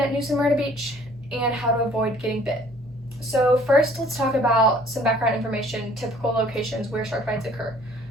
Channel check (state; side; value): normal; both; correlation 0.56